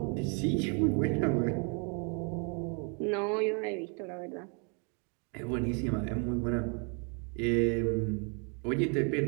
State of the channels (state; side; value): quieter; left; 37.0 dB